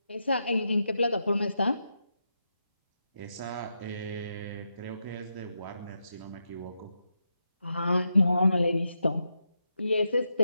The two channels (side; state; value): both; inverted; correlation -0.86